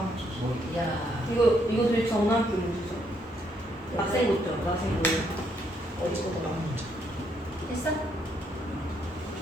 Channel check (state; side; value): normal; both; correlation 0.73